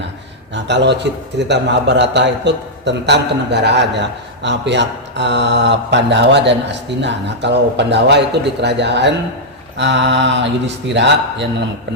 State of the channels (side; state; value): both; normal; correlation -0.07